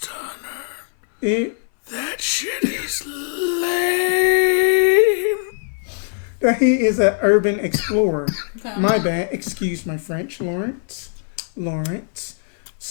hunter. it, That shit is lame. that he is an urban explorer. Okay. My bad. Excuse my French, Lawrence.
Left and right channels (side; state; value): right; silent; 60 dB below the other